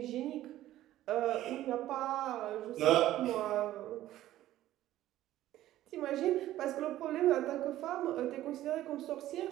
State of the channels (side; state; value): left; quieter; 14.1 dB